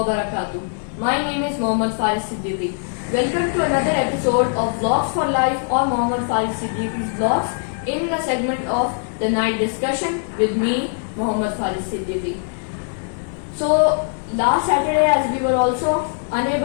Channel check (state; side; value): silent; right; 65 dB below the other